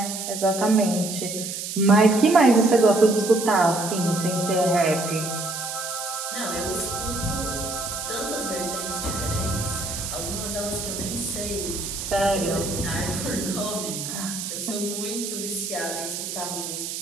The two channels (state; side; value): noise; right; hiss, 6 dB below the sound